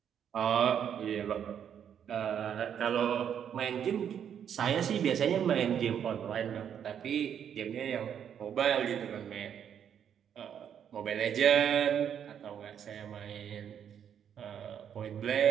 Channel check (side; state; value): left; quieter; 8.7 dB